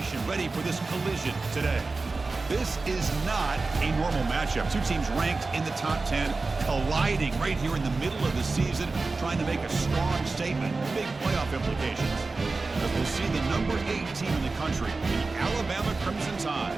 ready for this collision today. This is not a normal matchup. Two teams ranked in the top 10, colliding right here in the middle of the season, trying to make a strong statement, big playoff implications. As we'll see the number 8 team in the country, the Alabama Crimson Tide,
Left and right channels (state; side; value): quieter; left; 3.7 dB